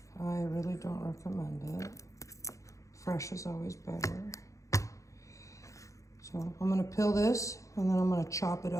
I really don't recommend it. Fresh is always better. So I'm gonna peel this and then I'm gonna chop it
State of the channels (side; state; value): right; late; 0.15 ms